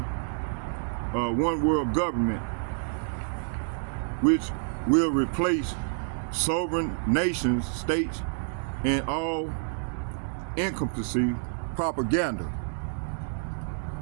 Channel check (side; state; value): left; silent; digital silence